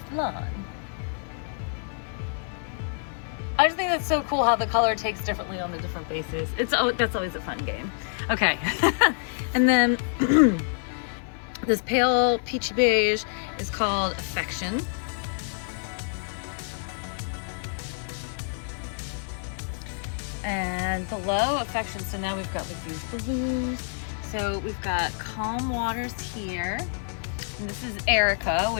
I just think that's so cool how the color takes differently on the different bases. That's always a fun game. Okay, and then this pale peachy beige is called Affection. And below Affection, so now we've got like these blues. So we've got Calm Waters here. And this is Erica,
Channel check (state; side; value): silent; right; 56 dB below the other